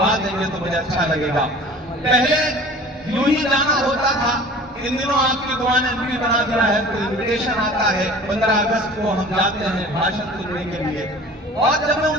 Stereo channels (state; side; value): normal; both; correlation 0.44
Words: देंगे तो मुझे अच्छा लगेगा। पहले यूं ही जाना होता था, इन दिनों आपकी दुआ ने भी बना दिया है, तो इन्विटेशन आता है 15 अगस्त को हम जाते हैं भाषण सुनने के लिए। और जब मैं उन